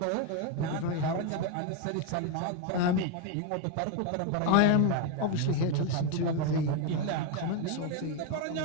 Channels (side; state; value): both; different; correlation 0.01